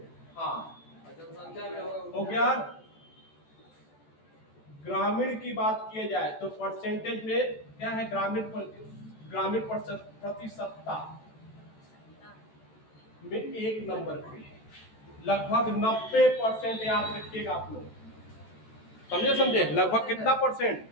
हाँ जनसंख्या में हो गया। ग्रामीण की बात किया जाए तो परसेंटेज में क्या है? ग्रामीण प्रतिशतता में 1 नंबर पे है, लगभग 90%। याद रखिएगा आप लोग, समझे? लगभग कितना परसेंट?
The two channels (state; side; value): late; right; 14 ms